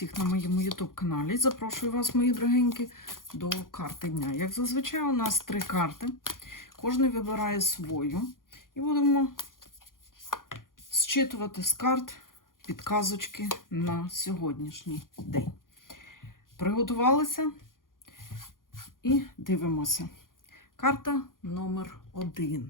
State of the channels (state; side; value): late; right; 0.90 ms